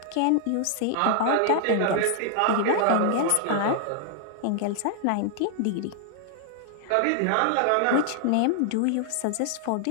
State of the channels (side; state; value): both; different; correlation 0.00